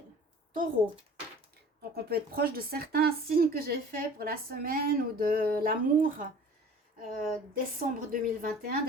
taureaux. Donc on peut être proche de certains signes que j'ai fait pour la semaine ou de l'amour décembre 2021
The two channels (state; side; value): normal; both; correlation 0.45